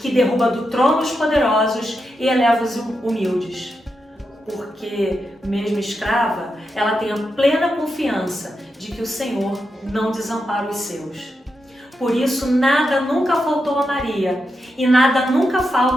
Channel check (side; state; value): both; normal; correlation 0.86